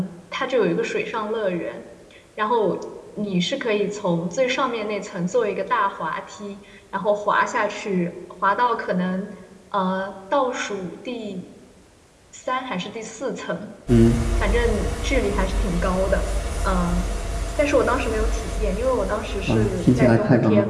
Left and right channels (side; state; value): both; identical; correlation 1.00